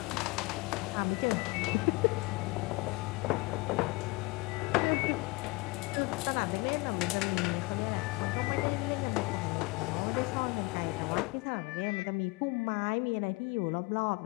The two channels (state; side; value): quieter; right; 24.8 dB